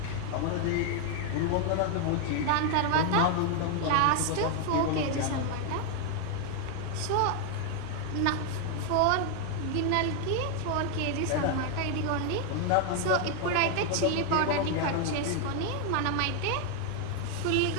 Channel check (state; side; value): different; both; correlation 0.00